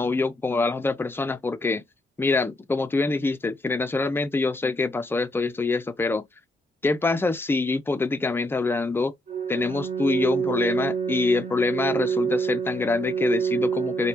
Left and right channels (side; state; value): both; normal; correlation 0.75